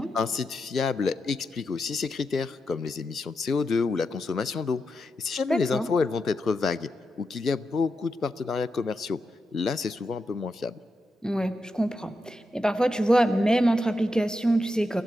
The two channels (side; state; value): both; normal; correlation 0.86